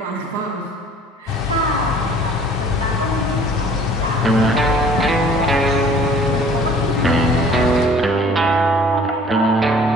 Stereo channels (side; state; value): both; normal; correlation 0.51